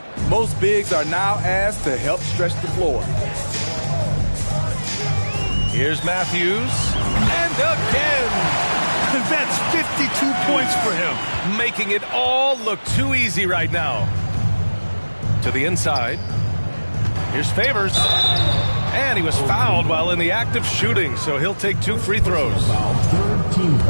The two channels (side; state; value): both; inverted; correlation -1.00